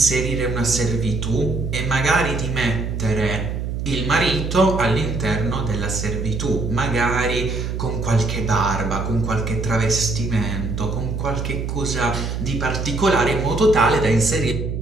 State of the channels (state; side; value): noise; right; hum, 3 dB below the sound